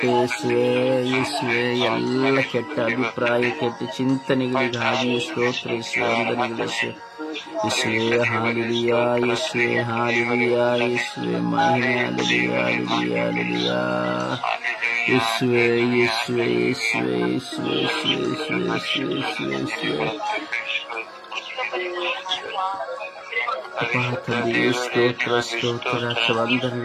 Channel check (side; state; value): both; identical; correlation 1.00